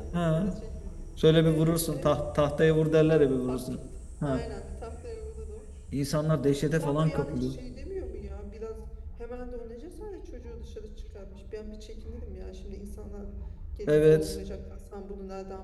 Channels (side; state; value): both; identical; correlation 1.00